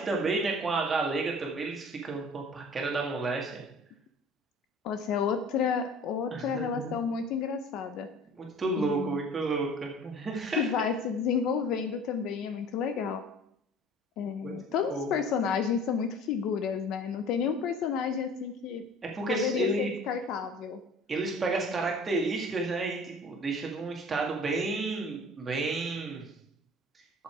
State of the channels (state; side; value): normal; both; correlation 0.46